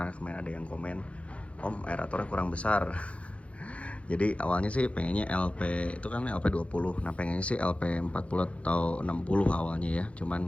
kemarin ada yang komen, Om aeratornya kurang besar. Jadi awalnya sih pengennya LP itu kan LP 20. Nah, pengennya sih LP 40 atau 60 awalnya ya.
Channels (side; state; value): right; late; 0.062 ms